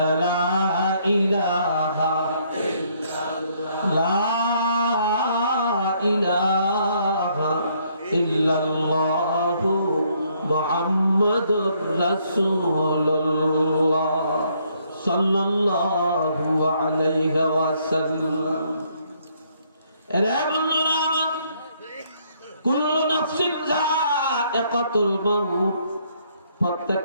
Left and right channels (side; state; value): both; inverted; correlation -0.69